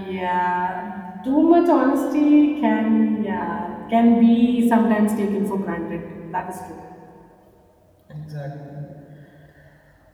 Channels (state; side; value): identical; both; correlation 1.00